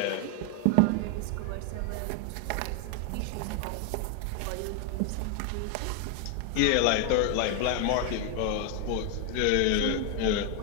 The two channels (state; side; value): different; both; correlation 0.00